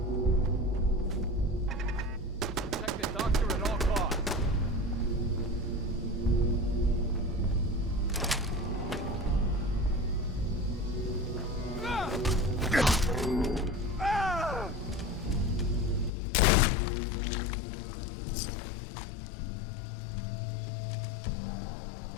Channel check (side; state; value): right; drops out; at 16.1 s